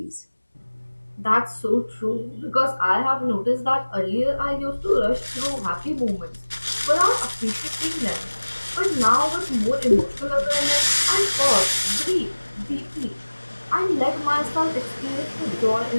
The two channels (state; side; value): inverted; both; correlation -1.00